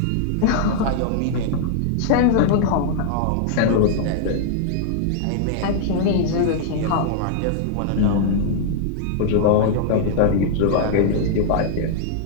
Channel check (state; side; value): different; both; correlation -0.01